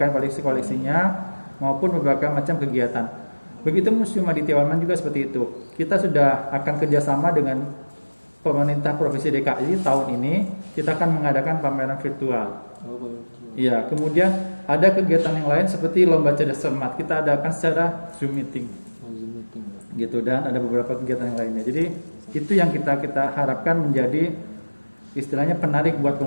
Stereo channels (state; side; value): inverted; both; correlation -1.00